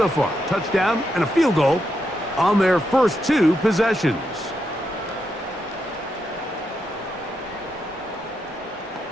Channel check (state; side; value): normal; both; correlation 0.83